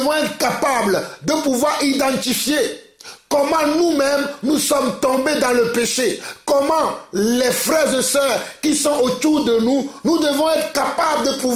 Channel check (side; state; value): both; identical; correlation 1.00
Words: être capables de pouvoir identifier comment nous-mêmes nous sommes tombés dans le péché. Comment les frères et sœurs qui sont autour de nous, nous devons être capables de